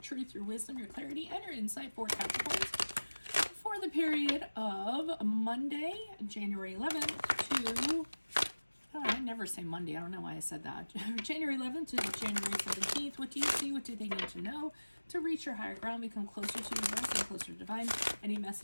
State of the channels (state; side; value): inverted; both; correlation -1.00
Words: your wisdom, your clarity, and your insight for Capricorns for the period of Monday, January 11th to... Oh, I never say Monday. I don't know why I said that. January 11th to January 17th. What do you see? What do they need to know to reach your higher ground, become closer to universe and closer to divine? Any